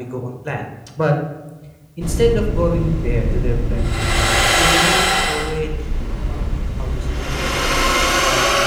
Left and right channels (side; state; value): both; identical; correlation 1.00